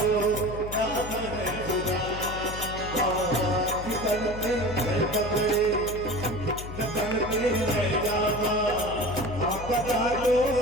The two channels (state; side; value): noise; left; hum, 10 dB below the sound